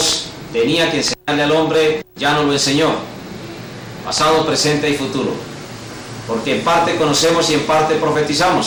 tenía que enseñarle al hombre ya no lo enseñó. Pasado, presente y futuro. Porque en parte conocemos y en parte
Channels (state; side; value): identical; both; correlation 1.00